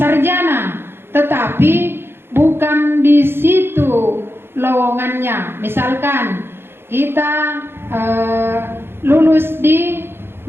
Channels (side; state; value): left; late; 0.11 ms